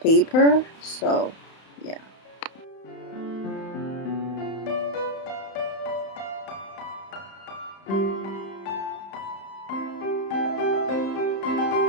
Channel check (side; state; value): right; late; 31 ms